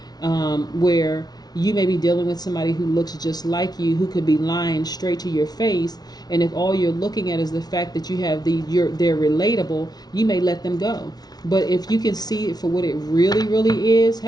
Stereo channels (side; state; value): right; late; 0.19 ms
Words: where you may be dealing with somebody who looks just like you, who could be lying straight to your face, and if all you're looking at is the fact that they're relatable, you may let them go. But if you can see it for what it really, really is,